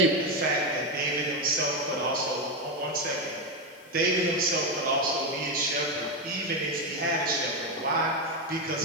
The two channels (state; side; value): noise; left; hiss, 27 dB below the sound